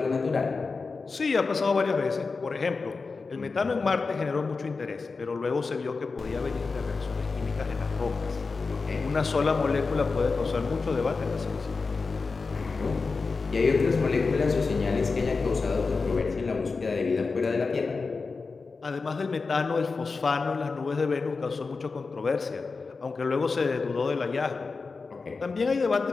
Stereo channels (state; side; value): quieter; right; 4.3 dB